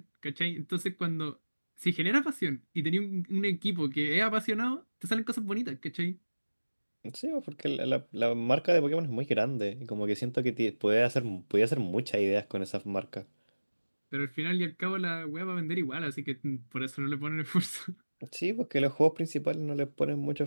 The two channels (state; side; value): inverted; both; correlation -1.00